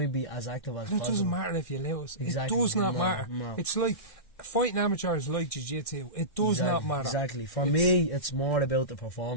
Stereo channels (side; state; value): right; late; 1.6 ms